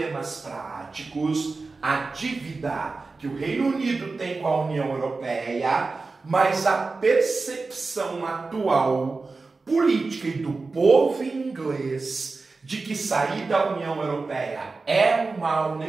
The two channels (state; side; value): quieter; left; 3.9 dB